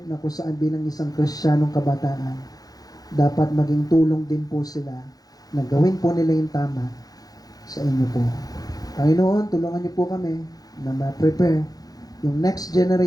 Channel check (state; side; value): late; right; 0.18 ms